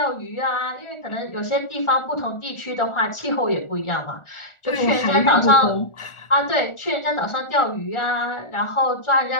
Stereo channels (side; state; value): right; late; 1.4 ms